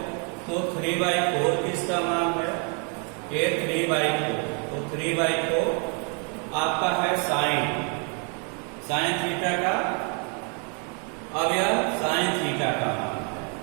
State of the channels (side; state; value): left; quieter; 37.9 dB